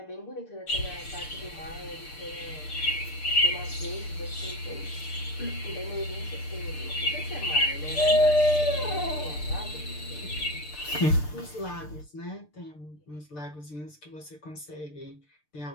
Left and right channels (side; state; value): right; late; 6.7 ms